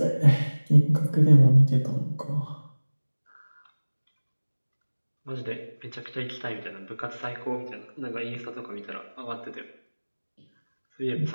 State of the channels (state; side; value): inverted; both; correlation -1.00